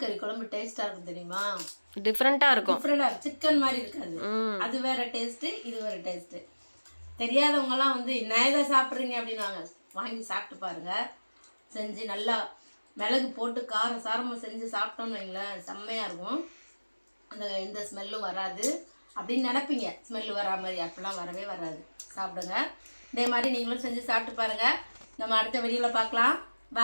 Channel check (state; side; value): inverted; both; correlation -1.00